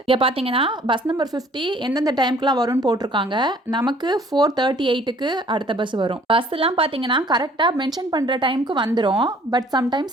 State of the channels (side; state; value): both; normal; correlation 0.56